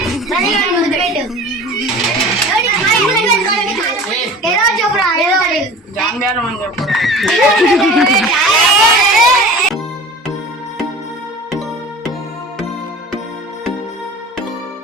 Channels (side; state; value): both; normal; correlation 0.39